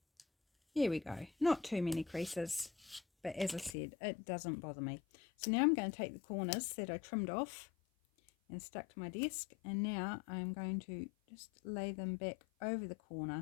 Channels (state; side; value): drops out; right; at 3.8 s